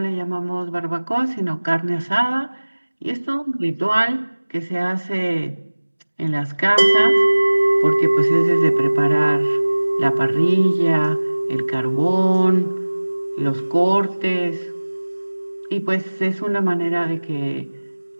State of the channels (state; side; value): inverted; both; correlation -1.00